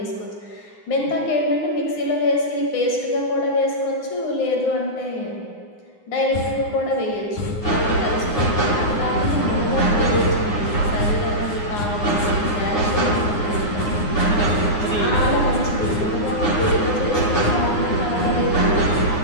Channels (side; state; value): right; late; 9.7 ms